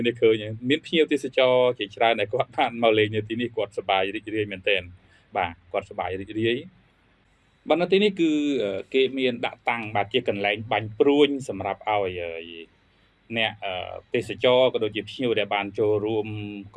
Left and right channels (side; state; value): both; identical; correlation 1.00